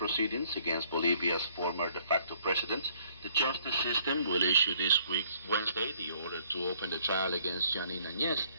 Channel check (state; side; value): inverted; both; correlation -0.62